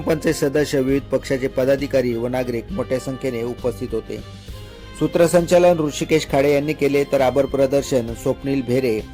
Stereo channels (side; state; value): both; identical; correlation 1.00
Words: सदस्य, विविध पक्षाचे पदाधिकारी व नागरिक मोठ्या संख्येने उपस्थित होते. सूत्रसंचालन ऋषिकेश खाडे यांनी केले तर आभार प्रदर्शन स्वप्नील भेरे